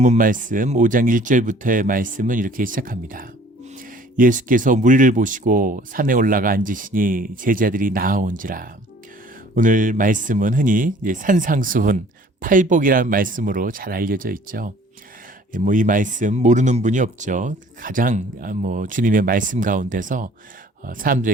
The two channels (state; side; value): normal; both; correlation 0.53